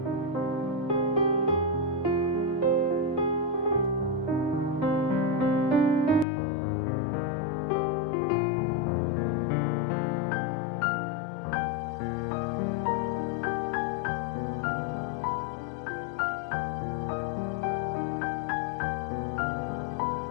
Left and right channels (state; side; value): drops out; right; at 6.2 s